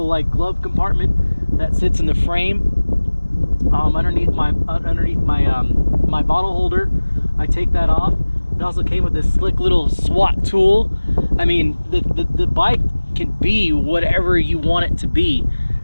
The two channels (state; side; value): inverted; both; correlation -1.00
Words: like glove compartment that sits in the frame underneath my my bottle holder. I take that off. It also came with this slick little SWAT tool. I mean, the bike can be whatever you want it to be.